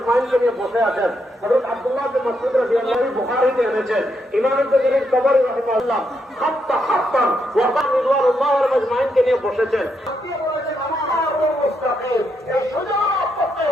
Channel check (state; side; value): normal; both; correlation 0.79